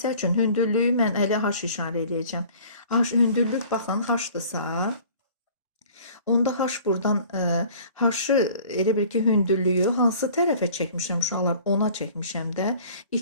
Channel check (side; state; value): both; inverted; correlation -0.49